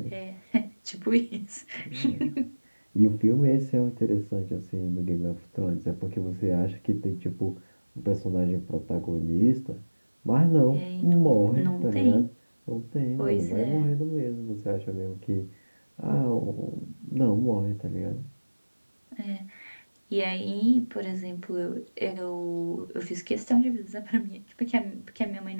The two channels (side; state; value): both; inverted; correlation -1.00